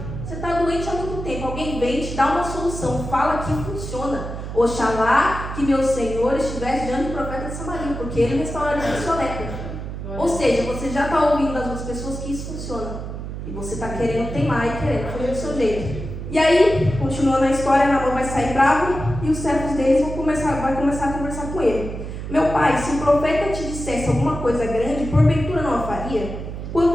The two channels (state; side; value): noise; right; hum, 7 dB below the sound